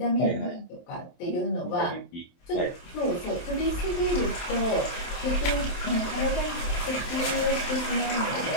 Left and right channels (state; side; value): late; right; 23 ms